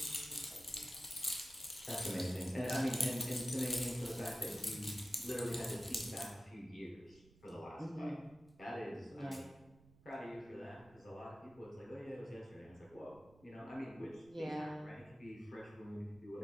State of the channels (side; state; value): right; noise; rumble, 24 dB below the sound